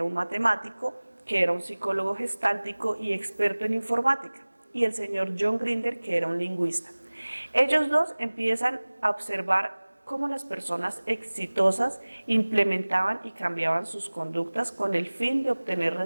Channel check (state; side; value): inverted; both; correlation -1.00